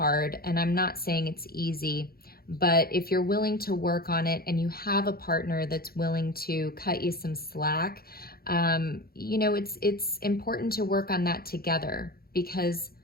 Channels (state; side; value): late; right; 0.44 ms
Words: and I'm not saying it's easy, but if you're willing to work on it and you have a partner that's willing to cut you some slack, you know, it's important to work on that together, because